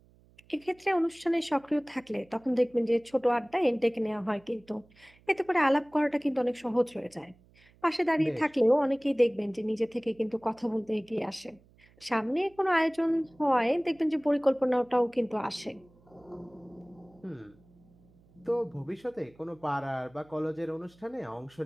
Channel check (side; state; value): right; noise; hum, 29 dB below the sound